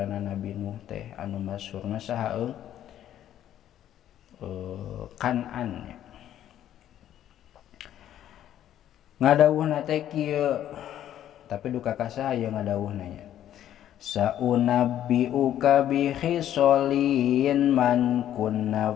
Nabi Nuh teh anu masyhurna saha Kan'an. Ngadawuhna teh kieu tapi duka ka saha ye ngadawuhna nya. Saunabbiuka bi khisolin man kunna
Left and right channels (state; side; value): quieter; right; 11.4 dB